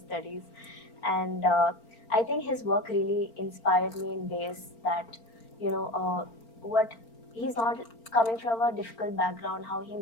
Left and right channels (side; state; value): right; late; 4.4 ms